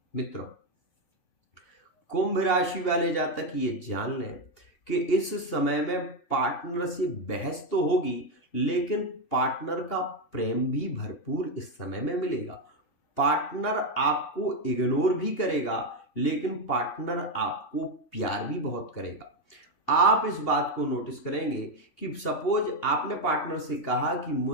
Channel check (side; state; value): right; late; 2.8 ms